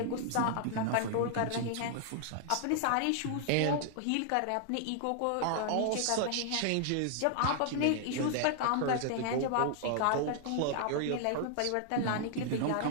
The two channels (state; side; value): different; both; correlation -0.01